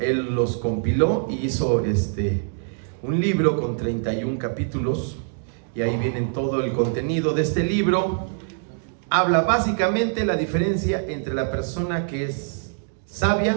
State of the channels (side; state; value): left; silent; digital silence